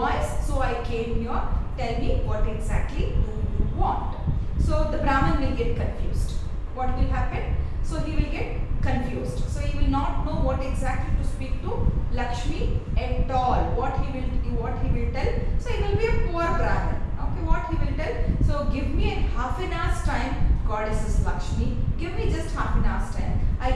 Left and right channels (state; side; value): identical; both; correlation 1.00